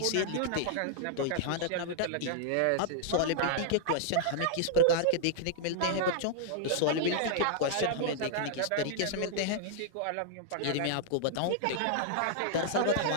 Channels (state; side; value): different; both; correlation -0.01